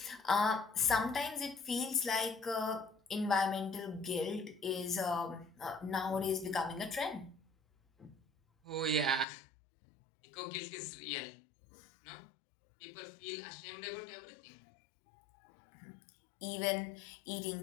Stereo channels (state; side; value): drops out; right; at 9.2 s